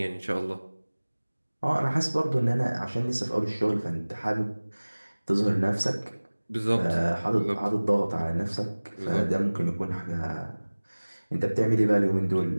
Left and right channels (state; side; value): inverted; both; correlation -1.00